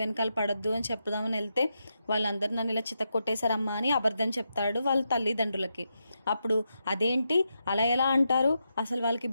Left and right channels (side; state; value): both; inverted; correlation -0.85